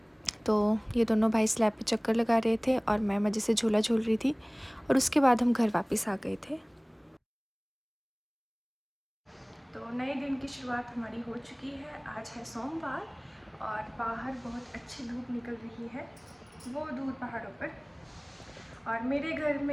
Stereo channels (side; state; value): both; identical; correlation 1.00